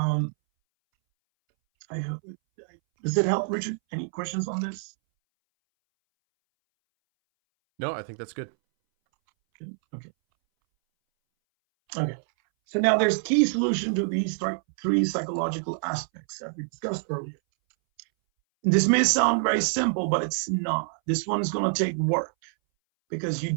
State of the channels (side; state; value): left; silent; 61 dB below the other